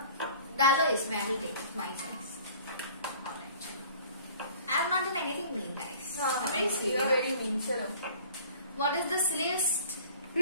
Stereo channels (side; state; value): both; inverted; correlation -0.48